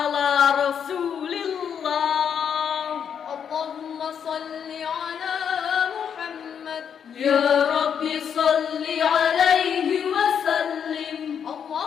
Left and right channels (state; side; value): quieter; right; 7.8 dB